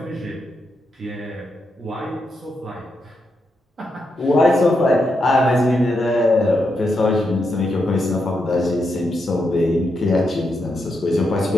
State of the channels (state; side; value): normal; both; correlation 0.83